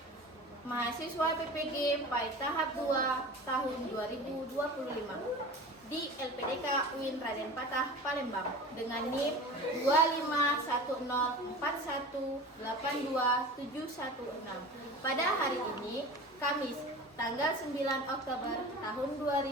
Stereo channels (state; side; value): normal; both; correlation 0.35